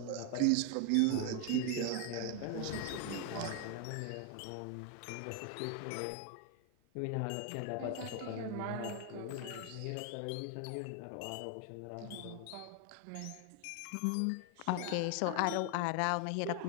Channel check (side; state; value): both; different; correlation 0.01